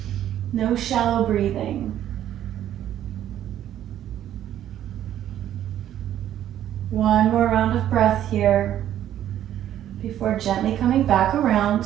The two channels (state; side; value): quieter; left; 11.4 dB